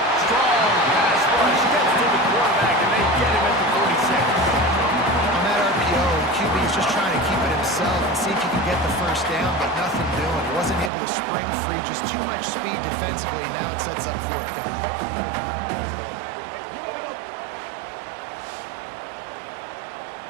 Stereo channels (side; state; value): left; drops out; at 10.9 s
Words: Strong pass rush gets to the quarterback, and they get him at the 46. On that RPO, the QB is just trying to keep it himself and see if he can get the first down, but nothing doing. He wasn't able to spring free, just too much speed defensively, and now it sets up 4th down.